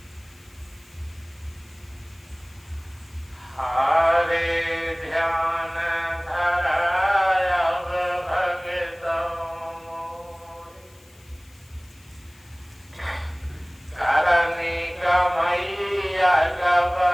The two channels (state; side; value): noise; left; hiss, 28 dB below the sound